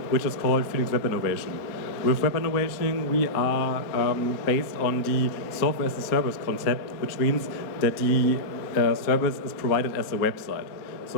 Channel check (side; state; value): right; late; 4.2 ms